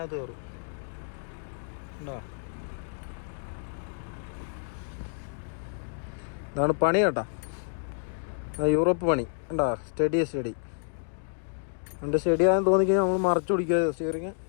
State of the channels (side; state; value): right; silent; digital silence